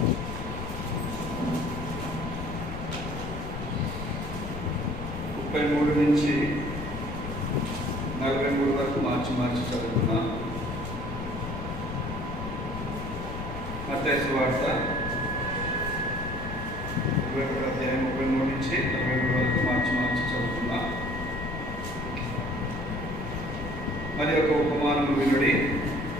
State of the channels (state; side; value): noise; left; rumble, 7 dB below the sound